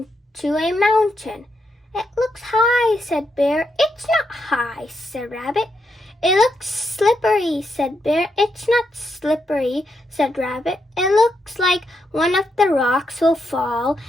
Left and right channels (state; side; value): normal; both; correlation 0.82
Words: to a mountain. It looks high, said Bear. It's not high, said Rabbit. It looks slippery, said Bear. It's not slippery, said Rabbit. It looks like one of the rocks will fall